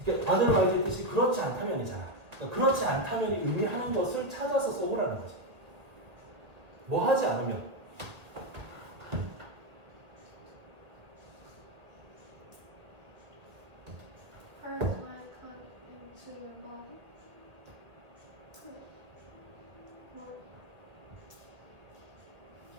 otherwise의 뜻이 그렇지 않다면이잖아. 그러니까 그렇지 않다면이 의미하는 것을 찾아서 써보라는 거지. 뭐 하지 않으면. Parts might come into your body.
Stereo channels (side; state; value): left; late; 2.0 ms